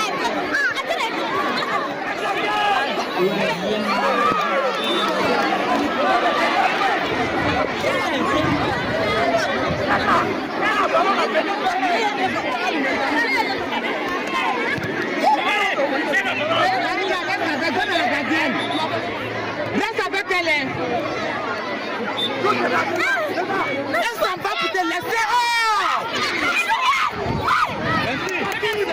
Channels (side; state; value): both; identical; correlation 1.00